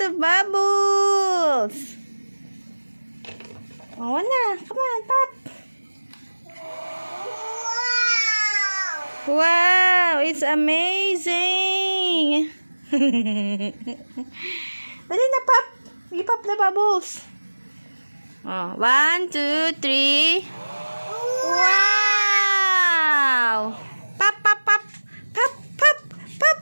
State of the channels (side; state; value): both; inverted; correlation -1.00